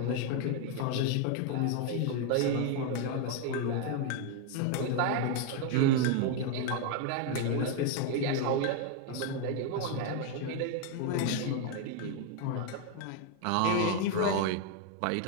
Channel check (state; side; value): different; both; correlation 0.01